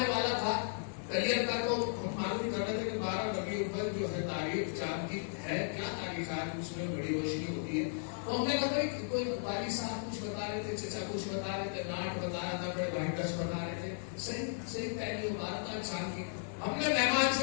वाला था करियर का तो मालूम कर रहे थे कि 12 बगे ऊपर जो है तारीख चांद की है, क्या तारीख आज उसमें बड़ी रोशनी होती है। तो हमने कहा भाई कोई वाली साहब कुछ बता रहे थे, चचा कुछ बता रहे थे, नाट बता रहा था, बड़े भाई दस बता रहे थे, सही पहली 12 चांद की। हमने मेहमान से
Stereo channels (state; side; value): silent; right; digital silence